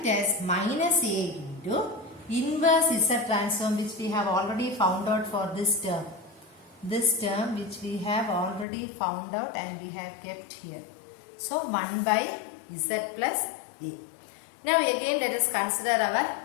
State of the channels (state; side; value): drops out; right; at 8.7 s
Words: as minus a into inverse z transform, which we have already found out for this term. This term which we have already found out and we have kept here. So, 1 by z plus a. Now, again let us consider